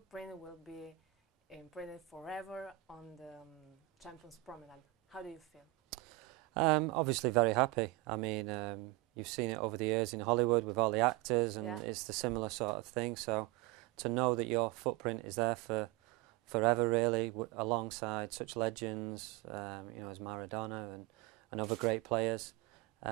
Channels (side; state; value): left; quieter; 19.7 dB